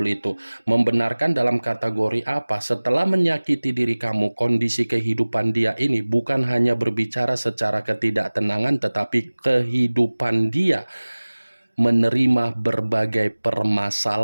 itu. Membenarkan dalam kategori apa? Setelah menyakiti diri kamu, kondisi kehidupan dia ini bukan hanya berbicara secara ketidaktenangan, tetapi kehidupan dia menerima berbagai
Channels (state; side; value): inverted; both; correlation -1.00